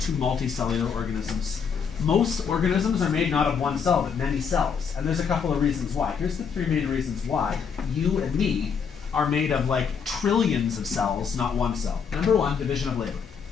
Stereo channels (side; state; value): right; quieter; 6.5 dB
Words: to multicellular organisms. Most organisms are made not of one cell, but many cells. And there's a couple of reasons why. Here's the 3 main reasons why you and me are made of like trillions of cells, not one cell. Number 1, division of labor.